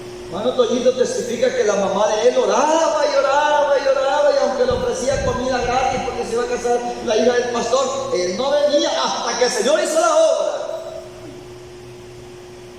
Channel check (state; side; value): identical; both; correlation 1.00